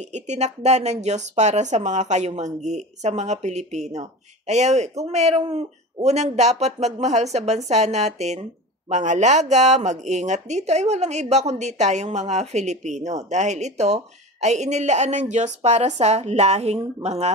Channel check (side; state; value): both; normal; correlation 0.31